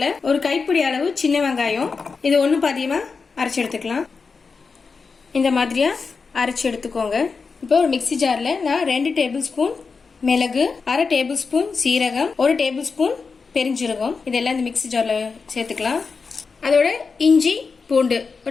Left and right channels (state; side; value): quieter; right; 4.9 dB